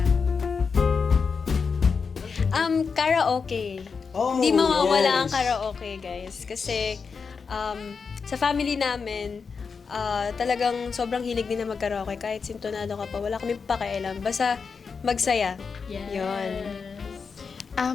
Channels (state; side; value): quieter; right; 5.4 dB